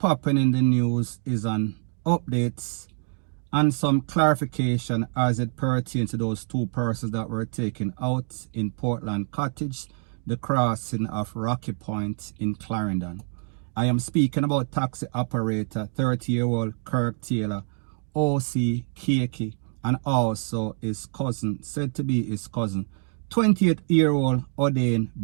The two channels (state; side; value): silent; left; 56 dB below the other